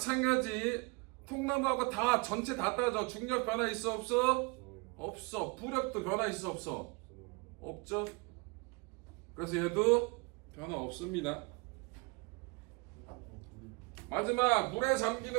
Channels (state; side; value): quieter; left; 28.9 dB